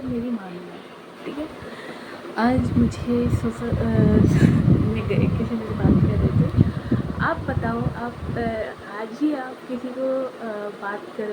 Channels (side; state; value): both; identical; correlation 1.00